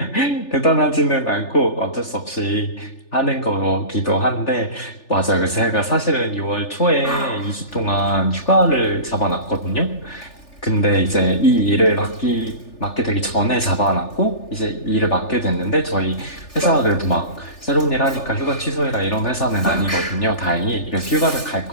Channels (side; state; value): right; late; 3.4 ms